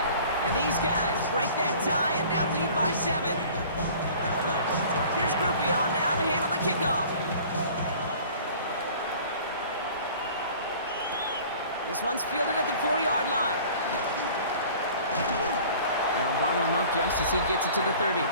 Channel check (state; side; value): inverted; both; correlation -0.47